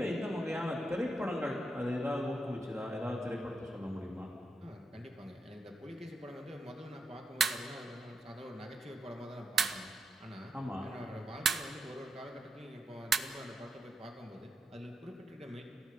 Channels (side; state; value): both; normal; correlation 0.83